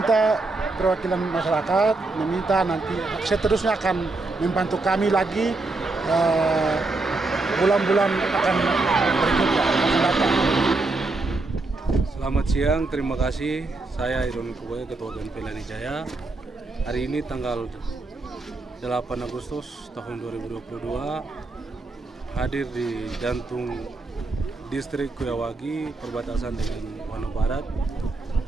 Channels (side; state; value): left; quieter; 3.3 dB